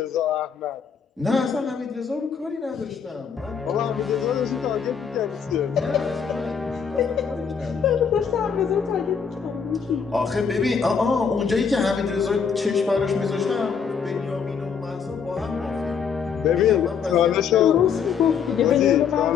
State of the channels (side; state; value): right; quieter; 6.6 dB